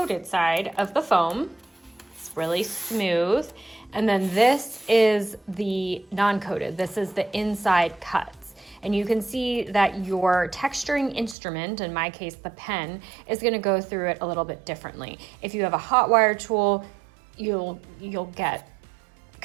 side of the foam. It's really smooth. And then this is the non-coated. This is the inside cuts. And you can see that your texturing instrument, in my case the pen, is going to go through it a little bit differently. If you have a hot wire tool, you'll get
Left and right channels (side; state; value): left; drops out; at 11.4 s